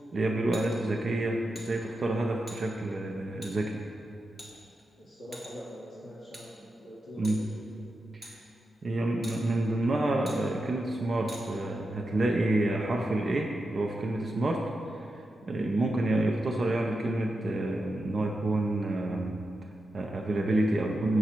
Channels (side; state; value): both; normal; correlation 0.89